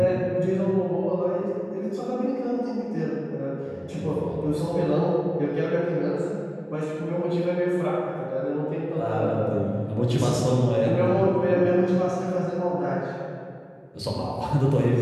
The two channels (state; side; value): identical; both; correlation 1.00